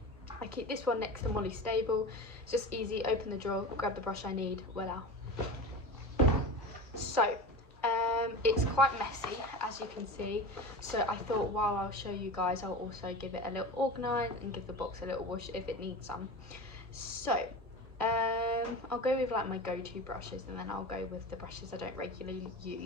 I keep this one next to Molly Stable. It's just easy, open the drawer, grab the brush I need, voila. So it's quite messy, as you can see, so I thought while I'll show you guys, I'll also give it a little organise and give the box a little wash if it needs some. So I'll go with like my go-to brushes, and then I'll go with the brushes I don't regularly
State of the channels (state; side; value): normal; both; correlation 0.30